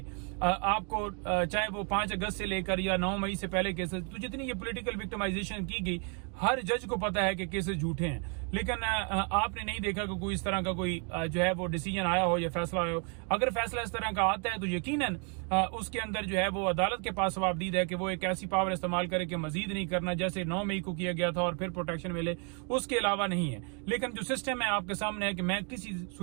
आपको चाहे वो 5 अगस्त से लेकर या 9 मई से पहले केसेस, तो जितनी ये पॉलिटिकल विक्टिमाइजेशन की गई, हर जज को पता है कि केसेस झूठे हैं। लेकिन आपने नहीं देखा कि कोई इस तरह का कोई जो है वो डिसीजन आया हो या फैसला आया हो। अगर फैसला इस तरह का आता है तो यकीनन उसके अंदर जो है वो अदालत के पास जवाबदीद है कि वो एक ऐसी पावर इस्तेमाल करे कि मजीद नहीं करना, जैसे 9 मई को किया गया था और फिर प्रोटेक्शन मिले, उसके अलावा नहीं है। लेकिन जो सिस्टम है आपके सामने है कि मैं किसी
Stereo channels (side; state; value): left; quieter; 37.9 dB